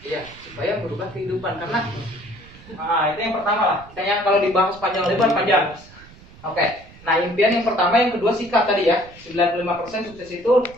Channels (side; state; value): right; noise; rumble, 22 dB below the sound